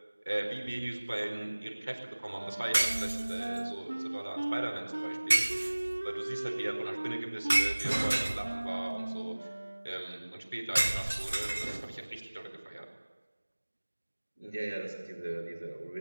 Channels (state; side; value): inverted; both; correlation -1.00